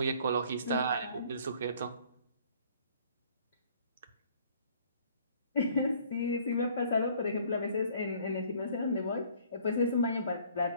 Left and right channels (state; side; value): inverted; both; correlation -0.57